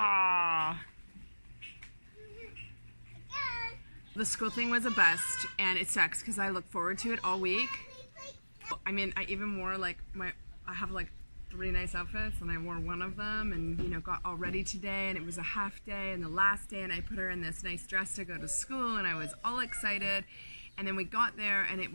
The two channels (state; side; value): inverted; both; correlation -1.00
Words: The school thing was a bust, and it sucks because I look forward to it all week. I mean, I even wore like I have like 3 nice outfits, and I wore one of them, and you know, got all ready today, and it was a half day and the last day, and I put her in this nice dress to go to school, and I was all excited. And then we got there, and it